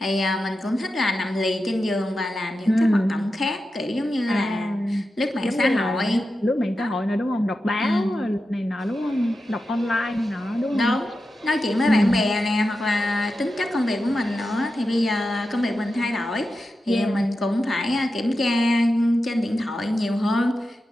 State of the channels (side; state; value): both; normal; correlation 0.90